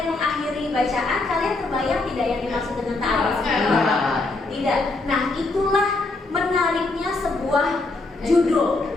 mengakhiri bacaan, kalian terbayang tidak yang dimaksud dengan ta'aruf? Tidak. Nah itulah menariknya sebuah judul.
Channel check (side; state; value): right; quieter; 3.3 dB